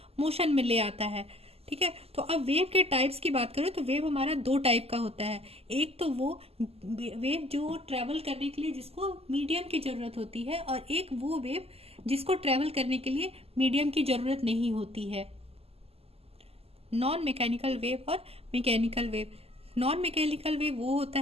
मोशन में ले आता है। ठीक है, तो अब वेव के टाइप्स की बात करें तो वेव हमारा दो टाइप का होता है। एक तो वो वेव जो ट्रेवल करने के लिए जिसको मीडियम की जरूरत होती है, और एक वो वेव जिसको ट्रेवल करने के लिए मीडियम की जरूरत नहीं होती है। नॉन मैकेनिकल वेव और mechanical wave. Non mechanical wave वो होता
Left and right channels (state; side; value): late; left; 0.29 ms